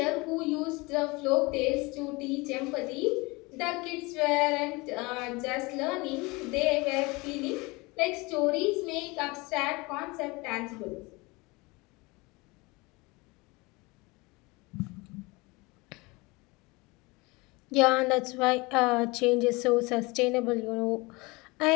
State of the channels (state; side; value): quieter; right; 24.8 dB